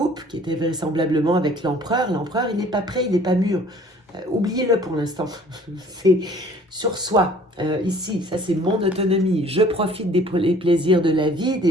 qui était vraisemblablement avec l'empereur. L'empereur, il n'est pas prêt, il n'est pas mûr. Oubliez-le pour l'instant. C'est sur soi. Ici, ça c'est mon autonomie. Je profite des plaisirs de la vie,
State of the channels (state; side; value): normal; both; correlation 0.53